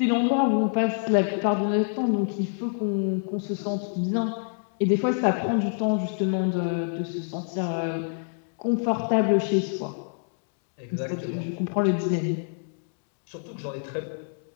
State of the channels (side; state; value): right; silent; digital silence